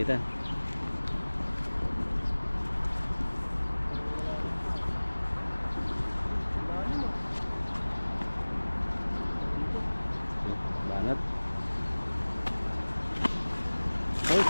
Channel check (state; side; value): inverted; both; correlation -1.00